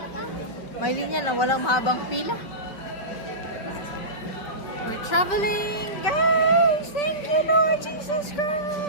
May linya na walang mahabang pila. We're traveling, guys! Thank you, Lord Jesus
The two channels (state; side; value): late; right; 5.4 ms